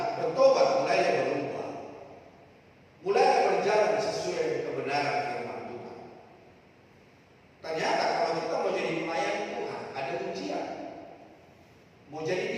bertobat, mulailah berubah, mulailah berjalan sesuai kebenaran firman Tuhan. Ternyata kalau kita mau jadi pelayan Tuhan, ada ujian. Mau jadi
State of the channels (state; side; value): identical; both; correlation 1.00